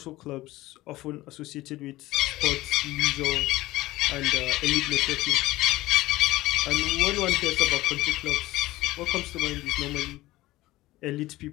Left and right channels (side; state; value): right; quieter; 17.6 dB